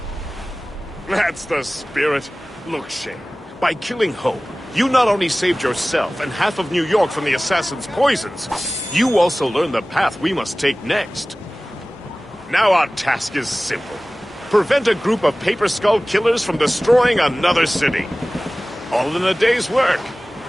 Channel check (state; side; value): normal; both; correlation 0.98